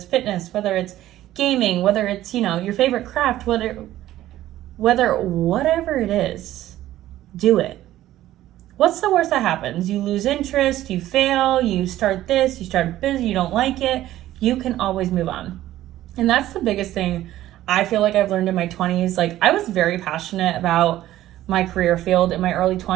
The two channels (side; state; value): left; quieter; 14.1 dB